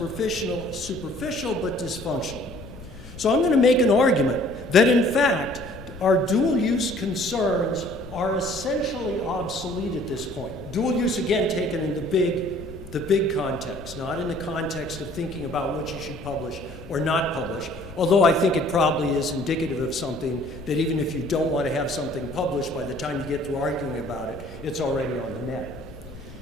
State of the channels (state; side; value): noise; left; rumble, 16 dB below the sound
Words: but dysfunctional. So I'm going to make an argument that in fact our dual use concerns are essentially obsolete at this point. Dual use, again, taken in the big context, not in the context of thinking about what you should publish or not publish, although I think it probably is indicative of something that even if you don't want to have something published, by the time you get through arguing about it, it's already on the net.